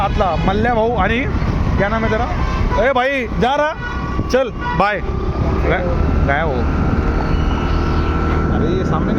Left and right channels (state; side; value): identical; both; correlation 1.00